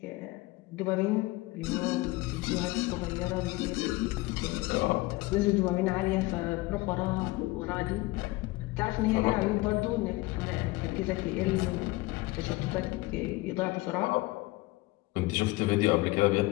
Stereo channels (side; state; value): right; quieter; 21.0 dB